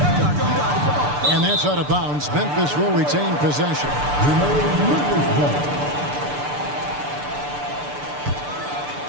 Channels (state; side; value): late; left; 6.8 ms